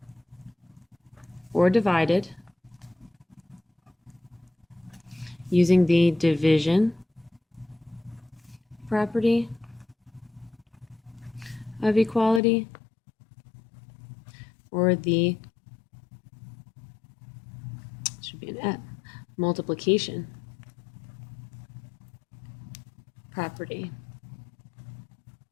or divided using the division property of equality or the, should be an F, multiplication property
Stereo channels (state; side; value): drops out; right; at 12.4 s